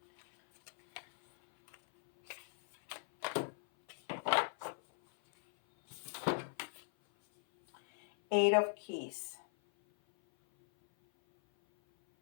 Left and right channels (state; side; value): silent; right; 52 dB below the other